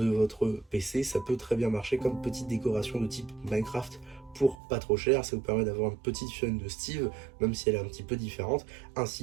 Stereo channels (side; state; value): left; drops out; at 4.5 s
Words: votre PC. Ça peut très bien marcher comme petite décoration de type Minecraft pour pas trop cher. Ça vous permet d'avoir une petite chaîne de Steve, même si elle est un petit peu différente,